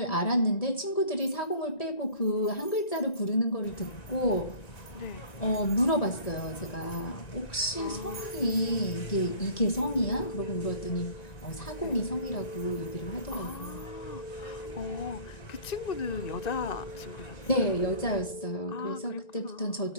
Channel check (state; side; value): late; right; 1.9 ms